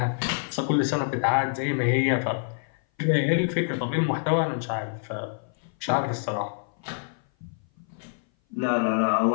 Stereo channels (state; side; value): silent; right; 57 dB below the other